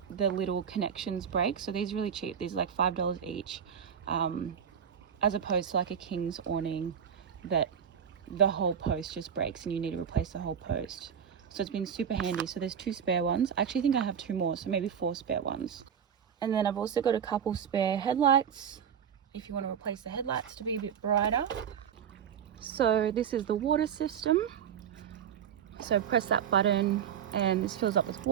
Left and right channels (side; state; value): left; quieter; 8.1 dB